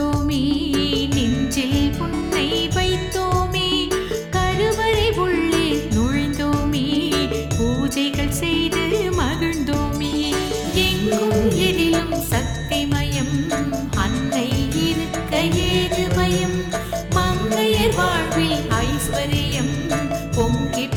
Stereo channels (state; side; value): identical; both; correlation 1.00